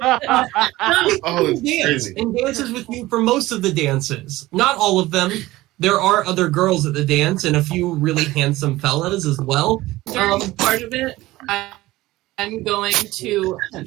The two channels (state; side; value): quieter; left; 17.9 dB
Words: Oh, it's Dance crazy. and dances with you for most of the dances. Not all of them. There are other girls at the dance and a few really handsome fellas as well. During part of it, I'm going to attempt